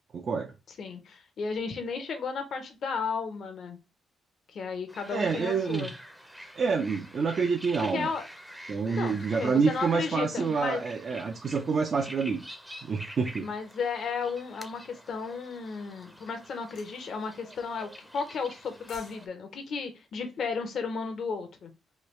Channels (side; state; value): both; normal; correlation 0.75